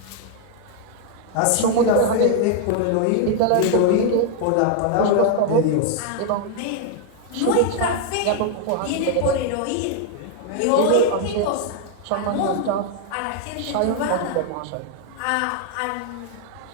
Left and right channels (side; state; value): both; different; correlation 0.00